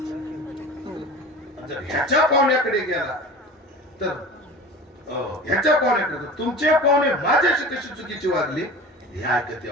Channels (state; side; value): normal; both; correlation 0.37